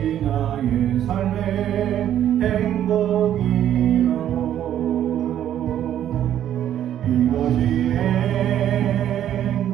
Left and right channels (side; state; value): left; quieter; 10.9 dB